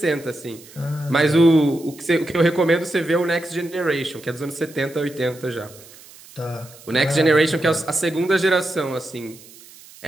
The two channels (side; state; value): right; noise; hiss, 21 dB below the sound